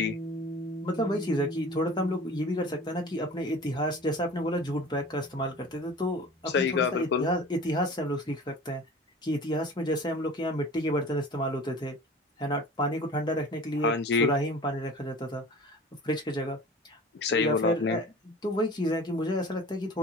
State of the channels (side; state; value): both; normal; correlation 0.41